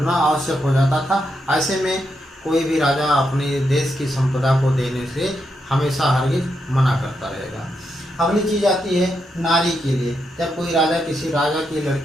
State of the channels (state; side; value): normal; both; correlation 0.83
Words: आवश्यक हो जाता था। ऐसे में कोई भी राजा अपने देश की संपदा को देने से हमेशा हरगिज मना करता रहेगा। अगली चीज आती है नारी के लिए। जब कोई राजा किसी राजा की